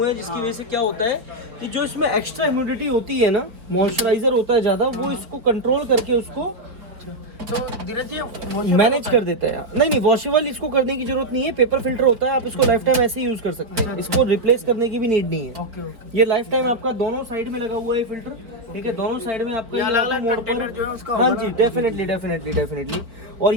हैं, जिसकी वजह से क्या होता है कि जो इसमें एक्स्ट्रा ह्यूमिडिटी होती है ना, मॉइस्चराइजर होता है ज़्यादा, वो इसको कंट्रोल करके उसको तो धीरज जी मैनेज कर देता है। नहीं, वॉशेबल इसको करने की जरूरत नहीं है। पेपर फिल्टर होता है, आप इसको लाइफ टाइम ऐसे ही यूज कर सकते हैं। इसको रिप्लेस करने की भी नीड नहीं है। ओके। ये लाइफ टाइम आपका दोनों साइड में लगा हुआ है फिल्टर, ठीक है। दोनों साइड में आपका अलग-अलग कंटेनर जो है उसका, हाँ जी, डेफिनेटली। और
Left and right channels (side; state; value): left; late; 4.3 ms